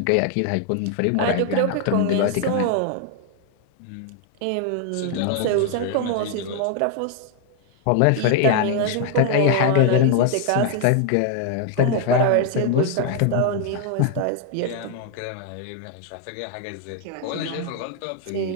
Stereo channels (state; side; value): different; both; correlation 0.00